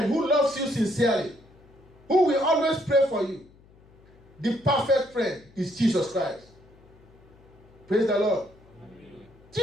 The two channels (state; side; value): noise; left; hum, 27 dB below the sound